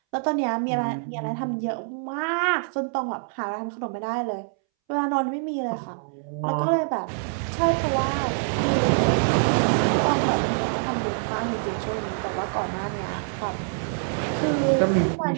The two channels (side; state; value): left; silent; 62 dB below the other